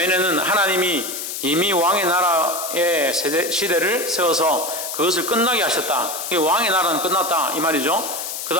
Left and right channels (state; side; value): noise; left; hiss, 6 dB below the sound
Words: 하나님이 이미 왕의 나라의 시대를 세워서 그것을 끝나게 하셨다. 왕의 나라는 끝났다 이 말이죠. 그